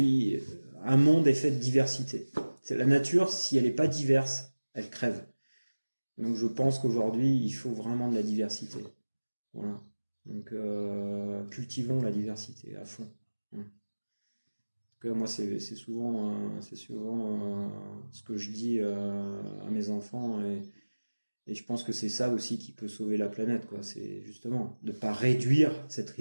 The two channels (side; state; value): both; inverted; correlation -1.00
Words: monde est fait de diversité. C'est la nature, si elle n'est pas diverse, elle crève. Donc je pense qu'aujourd'hui, il faut vraiment de la diversité. Voilà. Donc cultivons la diversité à fond. Voilà. En tout cas, moi, c'est souvent ce que je dis à mes enfants, et je pense que c'est ça aussi qui peut sauver la planète, quoi. C'est justement de pas réduire cette